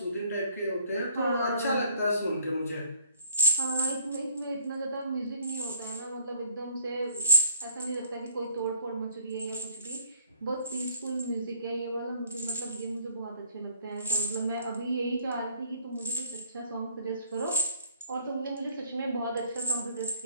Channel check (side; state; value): both; inverted; correlation -0.59